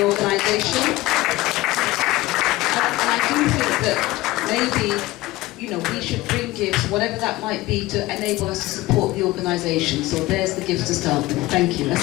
organisation. And I do think that maybe, we should bring gifts, whatever that might be, to enable us to support the organisation. So there's the gifts to start with. Thank you.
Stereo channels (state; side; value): quieter; right; 18.7 dB